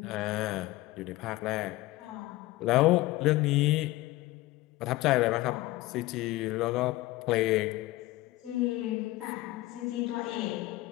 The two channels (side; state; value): right; quieter; 18.5 dB